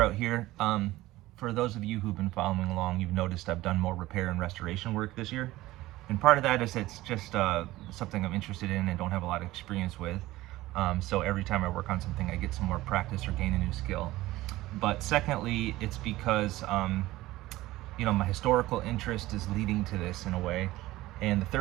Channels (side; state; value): left; quieter; 17.5 dB